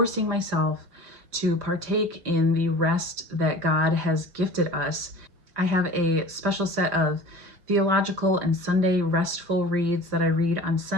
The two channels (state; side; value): late; left; 5.6 ms